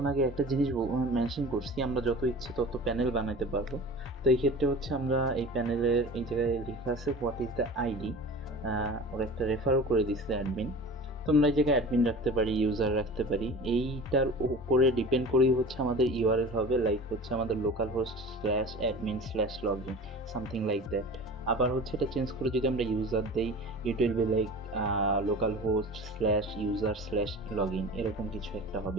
আগে একটা জিনিস মেনশন করছি, আমরা যত ইচ্ছে তত প্যানেল বানাতে পারবো। তো এই ক্ষেত্রে হচ্ছে আমরা এই প্যানেলের এই জায়গায় লেখা আছে হোয়াট ইজ দ্য আইডি, ওরা একটা রেফারও করে দিচ্ছে অ্যাডমিন। তো আমরা এই জায়গায় অ্যাডমিন রাখতে পারি, ইউজার রাখতে পারি, এইটার উপরে ডিপেন্ড করেই হচ্ছে আমাদের ইউআরএল হবে, লাইক হচ্ছে আমাদের local host /admin/login, something like that. আবার হচ্ছে এটা চেঞ্জ করে যদি আমরা ইউজার দেই, it will be like local host /user/login, এরকম কিছু একটা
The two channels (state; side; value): normal; both; correlation 0.37